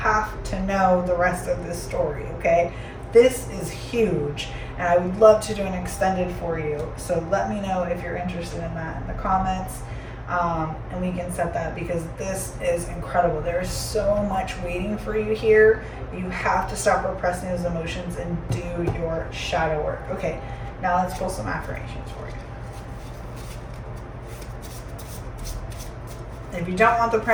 to know the rest of this story, okay? This is huge, and I would love to do an extended for you. So let me know if you're interested in that in the comments, and we can set that, because this is incredible. There is so much waiting for you here. You have to stop repressing those emotions and do your shadow work. Okay, now let's pull some affirmations for you. If you don't want the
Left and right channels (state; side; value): identical; both; correlation 1.00